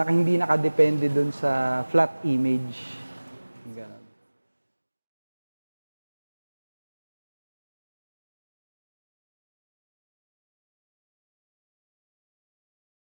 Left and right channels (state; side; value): inverted; both; correlation -1.00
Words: hindi nakadepende doon sa flat image. Ganun.